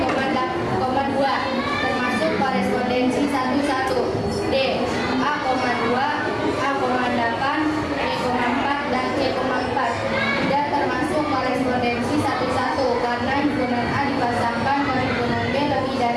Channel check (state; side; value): identical; both; correlation 1.00